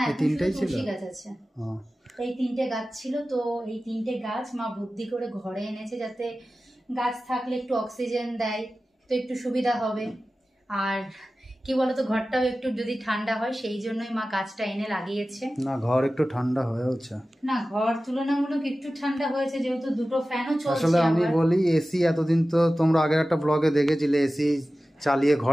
এই 3টাই ছিল। গাছ আছে, এই 3টে গাছ ছিল। তো এই 3টে গাছ মা বুদ্ধি করে ঘরে এনেছে, যাতে গাছ থাকলে একটু অক্সিজেন দেয়, তো একটু সুবিধা হবে। আর কি বলতো, ঘরটাও একটু যদি ঠান্ডা হয়, সেই জন্যই মা গাছটা এনে লাগিয়েছে। না ঘর একটু ঠান্ডা হয়েছে, না ঘর তুলনামূলক একটু ঠান্ডা হয়েছে, যেহেতু দুটো ফ্যানও চলছে। আসলে আমি বলি এসি এতদিন তো তোমরা আগের একটা ব্লগে দেখেছিলে, এসি চালিয়ে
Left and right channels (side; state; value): both; normal; correlation 0.95